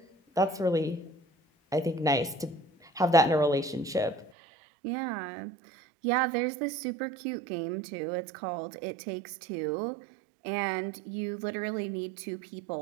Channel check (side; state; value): left; drops out; at 4.3 s